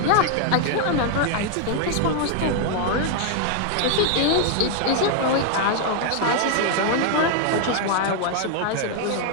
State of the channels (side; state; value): both; different; correlation 0.00